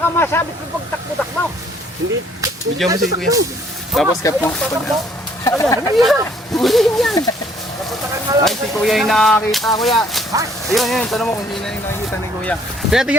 masabit mo pagtakbo-takbo. Hindi. Video mo si kuya. Tapos cap mo. Ay, si kuya yung nakakita, kuya. Ayun, tanong mo kung sino yung nakikita ni kuya. Kaya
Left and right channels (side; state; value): both; normal; correlation 0.62